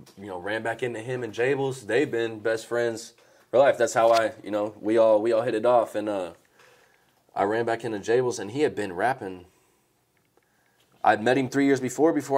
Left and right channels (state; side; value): identical; both; correlation 1.00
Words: ran back into him and Jables. They've been best friends for life. That's how we all hit it off, and I ran back into Jables, and he had been rapping. I'd met him 3 years before